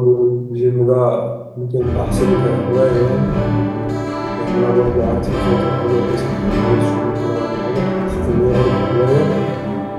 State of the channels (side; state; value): both; identical; correlation 1.00